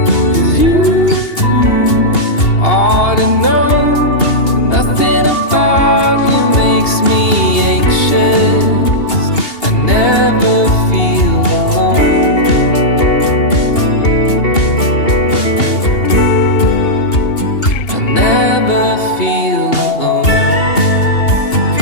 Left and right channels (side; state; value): right; late; 2.8 ms